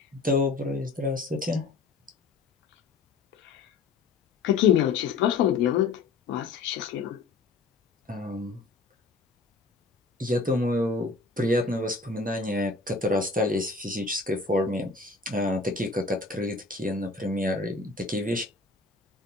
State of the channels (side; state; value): right; quieter; 3.9 dB